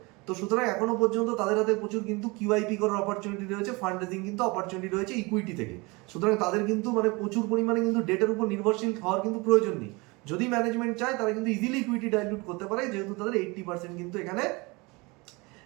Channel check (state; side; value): quieter; left; 25.8 dB